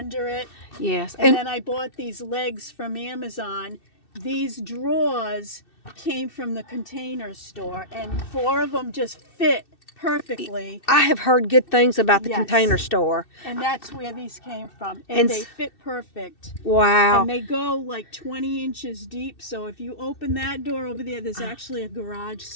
it. Yes. And then I bought these legs from Amazon. These drawers came from the Container Store, and 4 of them just fit perfectly. I have heard good things about the Container Store. And that's where these came from. And they fit perfect. Wow. And they go like 20 inches deep. So if you open that door over there, there's actually a garage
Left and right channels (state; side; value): late; right; 2.6 ms